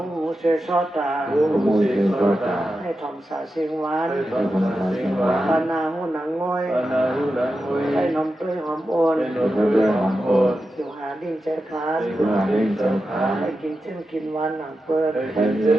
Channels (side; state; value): both; normal; correlation 0.90